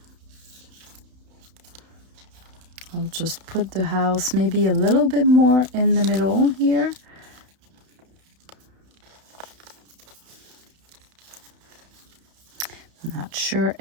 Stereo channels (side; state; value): left; late; 32 ms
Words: I'll just put the house maybe a little bit more in the middle here. Not sure